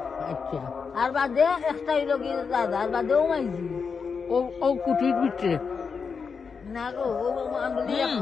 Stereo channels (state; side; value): quieter; right; 5.6 dB